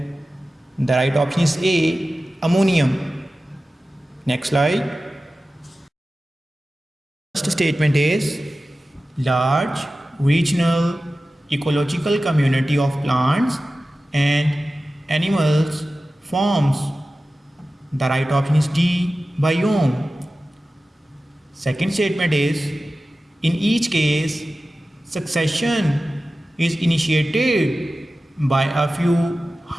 the right option is A, ammonium. Next slide. First statement is large regional ecological community of plants and animals forms, the right option is D, biome. Second statement is in each case succession is initiated by a few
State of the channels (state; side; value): normal; both; correlation 0.95